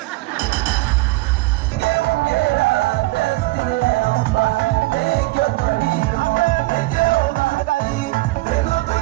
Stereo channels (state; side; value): quieter; left; 20.9 dB